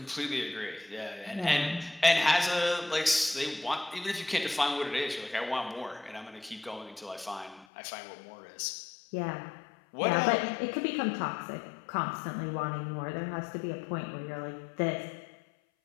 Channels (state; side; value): drops out; right; at 7.7 s